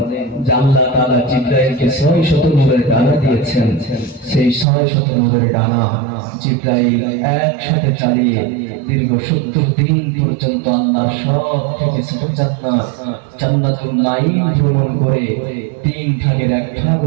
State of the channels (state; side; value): drops out; left; at 4.7 s